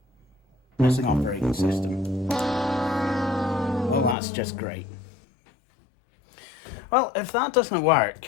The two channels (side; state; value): right; drops out; at 4.2 s